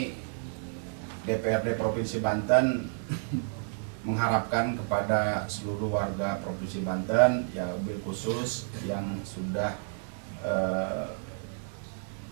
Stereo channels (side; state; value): left; silent; 58 dB below the other